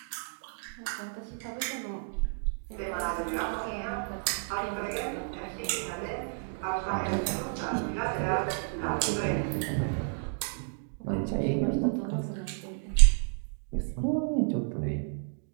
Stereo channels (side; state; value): left; silent; 57 dB below the other